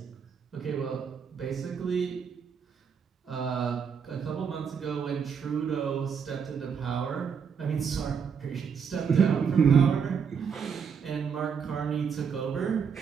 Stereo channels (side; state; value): left; quieter; 6.6 dB